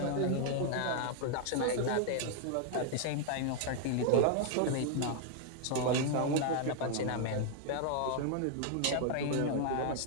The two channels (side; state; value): both; different; correlation 0.00